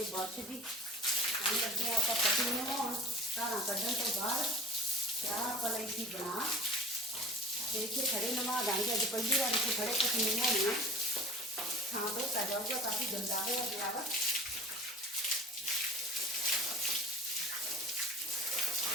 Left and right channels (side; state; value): both; normal; correlation 0.41